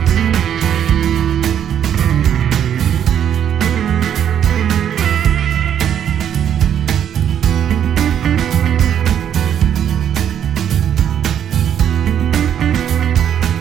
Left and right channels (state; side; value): quieter; left; 9.4 dB